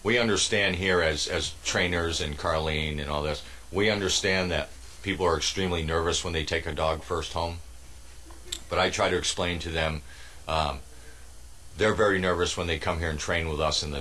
We understand here as trainers and Carlene and all this, we understand that people are extremely nervous when they take a dog first home. But I try to explain to them, they're very nervous when they come here and train with us and the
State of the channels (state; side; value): identical; both; correlation 1.00